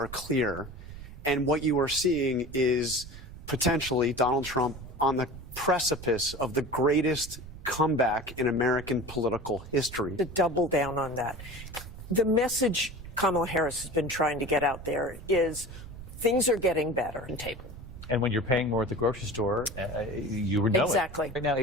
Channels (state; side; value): noise; right; rumble, 14 dB below the sound